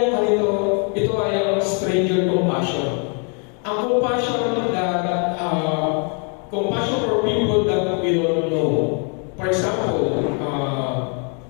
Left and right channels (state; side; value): quieter; right; 39.2 dB